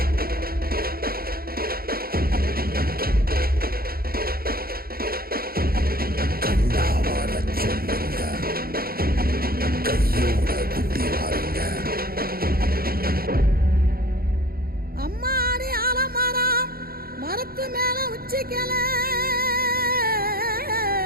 அம்மாடி ஆலமரம் மரத்து மேல உச்சிக்கல,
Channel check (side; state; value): left; late; 0.44 ms